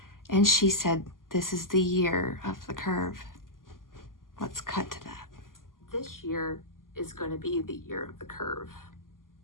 and she said, "This is the year of the curve." Let's cut to that. This year is going to be the year of the curve.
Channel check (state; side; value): late; right; 0.91 ms